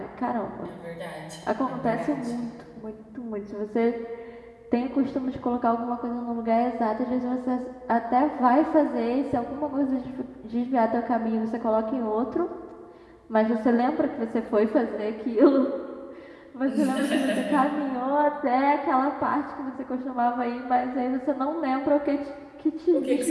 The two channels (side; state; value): both; identical; correlation 1.00